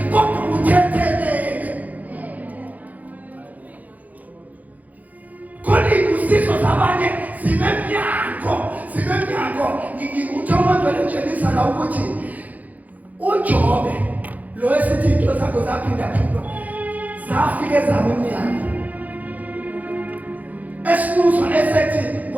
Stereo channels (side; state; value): left; late; 0.079 ms